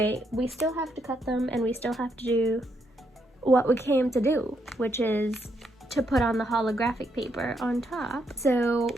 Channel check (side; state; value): both; normal; correlation 0.77